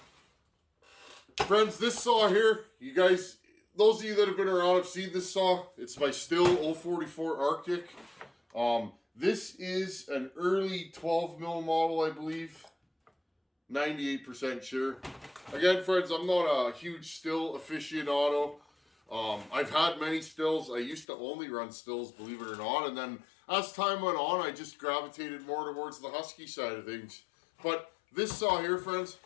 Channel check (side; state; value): right; drops out; at 21.1 s